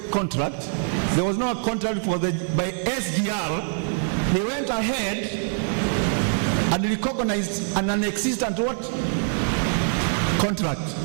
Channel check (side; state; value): left; silent; 58 dB below the other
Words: contract, there was no contract by SGR, they went ahead and recognized an non-existent what? Contract.